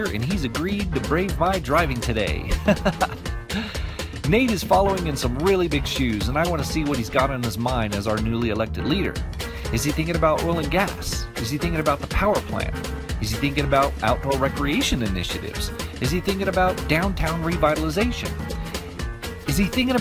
and he's agreed to brave my driving today. Nate is following in some really big shoes, and I want to see what he's got on his mind as our newly elected leader. Is he thinking about oil and gas? Is he thinking about the power plant? Is he thinking about outdoor recreation initiatives? Is he thinking about downtown revitalization? Is he thinking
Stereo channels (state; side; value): identical; both; correlation 1.00